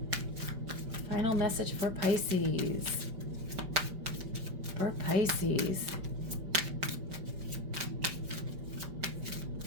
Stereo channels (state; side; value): late; left; 5.3 ms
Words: Final message for Pisces. For Pisces.